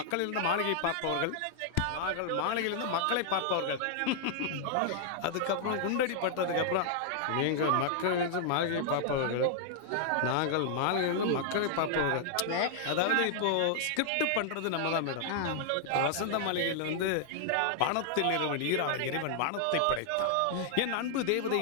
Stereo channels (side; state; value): both; different; correlation -0.01